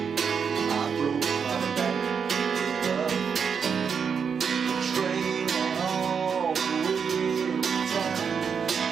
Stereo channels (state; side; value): quieter; left; 6.5 dB